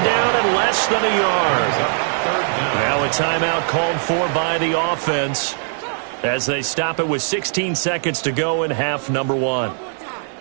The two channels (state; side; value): silent; left; digital silence